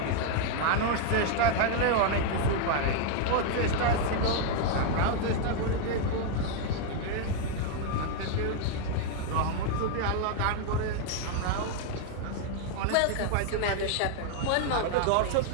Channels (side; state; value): both; different; correlation 0.00